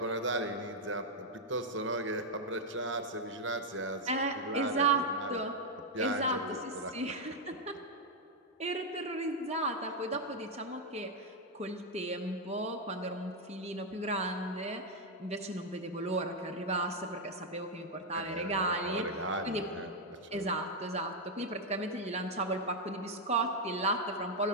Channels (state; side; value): normal; both; correlation 0.00